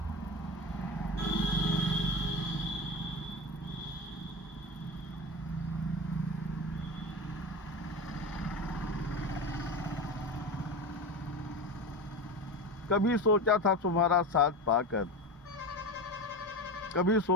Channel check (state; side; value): normal; both; correlation 0.23